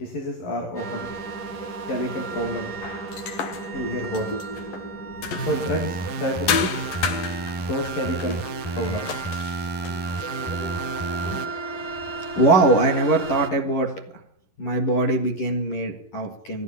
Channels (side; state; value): right; late; 11 ms